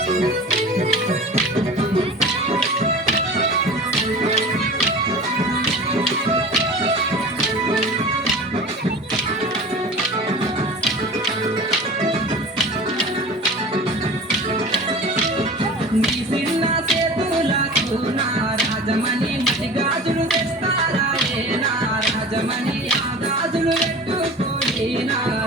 నీ చిన్న చేతులకు రాజమణి మట్టి గాజులు తెస్తారా రాజమణి ఆ గాజులు పెట్టుకొని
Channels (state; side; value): normal; both; correlation 0.38